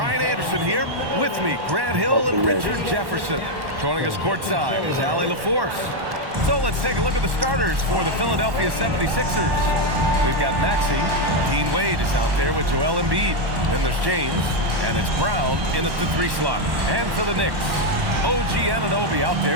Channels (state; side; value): late; left; 1.1 ms